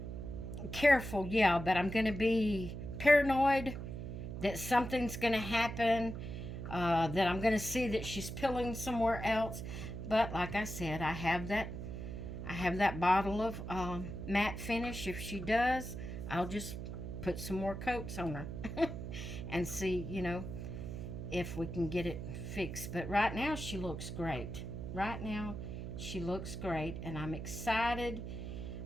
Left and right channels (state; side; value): noise; right; hum, 7 dB below the sound